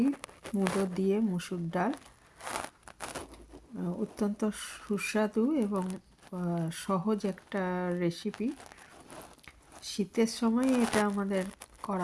মুলো দিয়ে মুসুর ডাল। অত্যন্ত সুস্বাদু এবং সহজ একটা রেসিপি। শীতের সময় এটা আমাদের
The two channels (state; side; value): identical; both; correlation 1.00